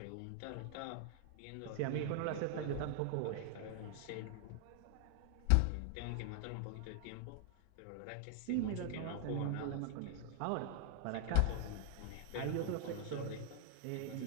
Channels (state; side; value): different; both; correlation 0.00